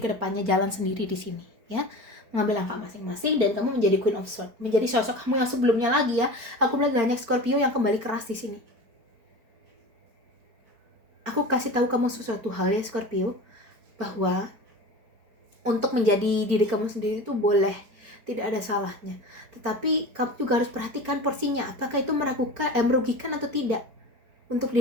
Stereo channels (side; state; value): left; late; 4.4 ms